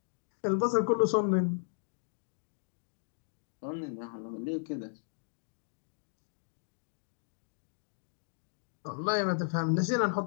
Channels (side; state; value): right; silent; digital silence